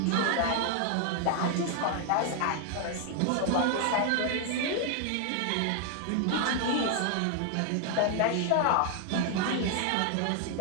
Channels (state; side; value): different; both; correlation 0.00